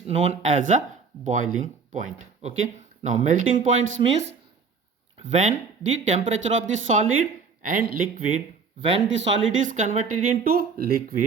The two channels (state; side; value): quieter; left; 5.3 dB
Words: known as a boiling point. Okay, now melting points means when the temperature of the solid and liquid, when the solid is converted into